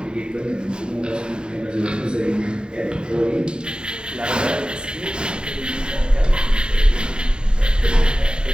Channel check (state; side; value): late; left; 0.049 ms